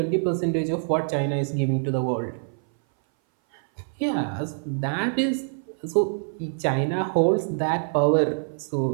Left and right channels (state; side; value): silent; left; 59 dB below the other